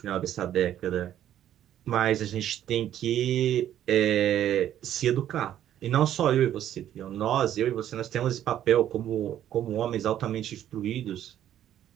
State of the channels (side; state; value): left; quieter; 11.3 dB